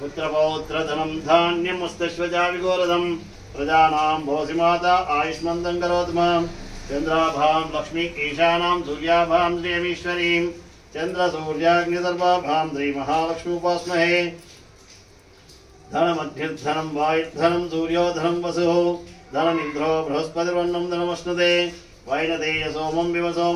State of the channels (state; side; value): identical; both; correlation 1.00